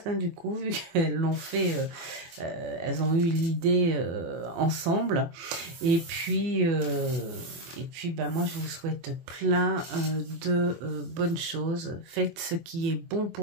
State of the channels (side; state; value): left; late; 24 ms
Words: hein, du coup, vu qu'elles l'ont fait, elles ont eu l'idée ensemble. Et puis, ben, moi, je vous souhaite plein de bonnes choses. Faites ce qui est bon